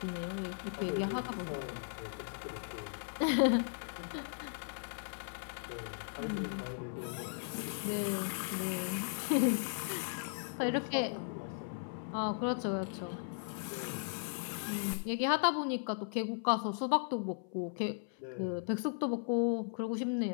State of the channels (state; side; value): silent; right; 53 dB below the other